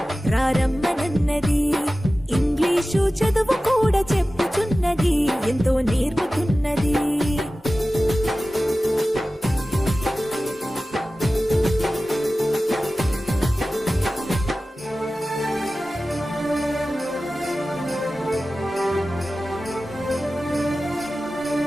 రారమ్మనన్నది. ఇంగ్లీషు చదువు కూడా చెప్పుచున్నది, ఎంతో నేర్పుతున్నది.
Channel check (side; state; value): both; normal; correlation 0.95